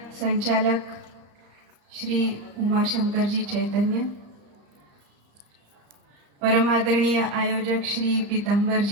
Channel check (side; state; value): left; late; 34 ms